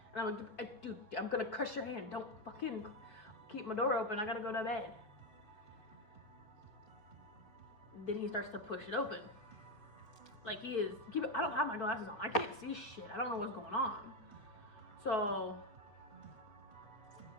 And I'm like, dude, I'm gonna crush your hand. Don't fucking keep my door open. I gotta go to bed. Then he starts to push it open. Like he is, I don't have my glasses on. I can't see shit. I don't know what's going on. So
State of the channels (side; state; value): right; late; 4.8 ms